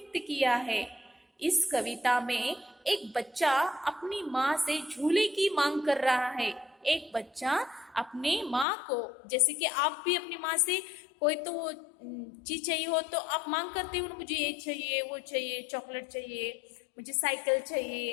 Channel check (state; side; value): drops out; right; at 8.7 s